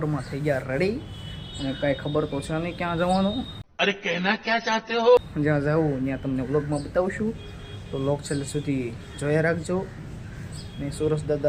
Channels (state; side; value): identical; both; correlation 1.00